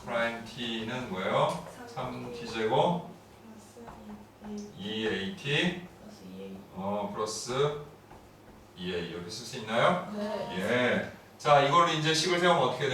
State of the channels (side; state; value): both; identical; correlation 1.00